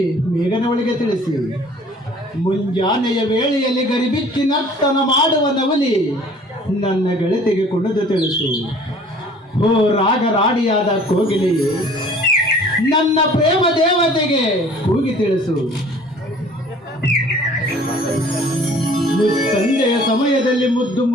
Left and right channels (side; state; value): both; normal; correlation 0.51